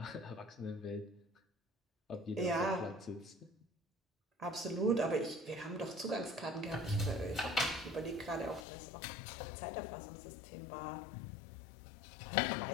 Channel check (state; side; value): drops out; right; at 8.7 s